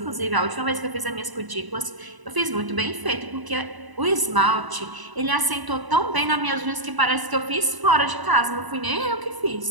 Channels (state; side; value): late; left; 1.0 ms